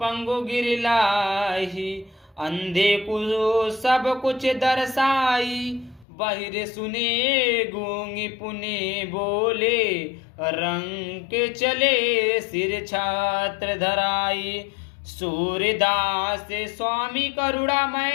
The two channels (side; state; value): right; drops out; at 6.1 s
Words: पंगु गिरलाई, अंधे को सब कुछ दर्शाई, बहिर सुने गूंगी पुनि बोले, रंग के चले सिर छात्र धराई, सूर्यदास स्वामी